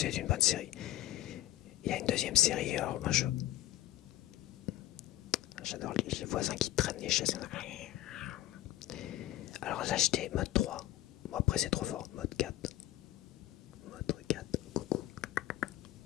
une bonne série. Il y a une deuxième série, alors moi j'adore les voisins qui traînent les chaises. Alors là j'étais mode 3. Bon, après c'est trop fort. Mode 4. Mode 4. Coucou.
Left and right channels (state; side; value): quieter; right; 14.3 dB